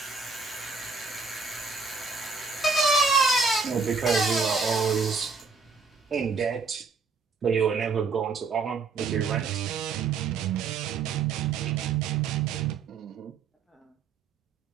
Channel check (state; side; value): quieter; left; 4.8 dB